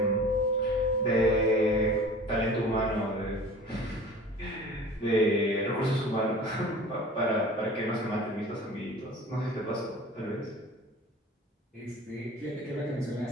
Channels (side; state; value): both; normal; correlation 0.42